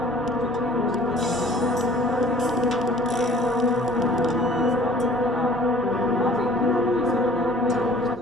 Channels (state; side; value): normal; both; correlation 0.52